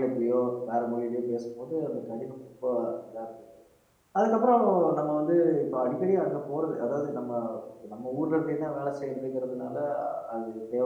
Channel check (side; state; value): both; identical; correlation 1.00